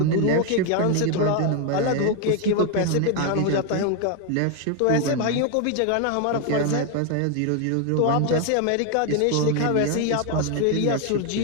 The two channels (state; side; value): different; both; correlation 0.01